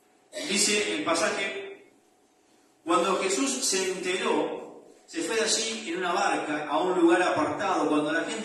Dice el pasaje, cuando Jesús se enteró, se fue de allí en una barca a un lugar apartado. Cuando la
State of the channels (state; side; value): identical; both; correlation 1.00